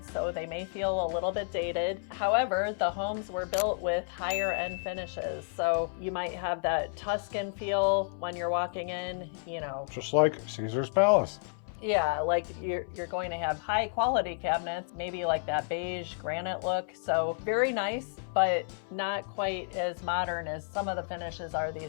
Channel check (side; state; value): right; silent; 57 dB below the other